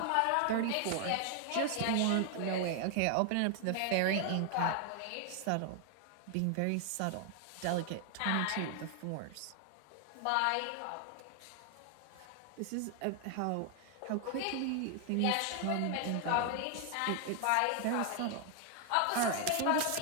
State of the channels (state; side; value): different; both; correlation 0.00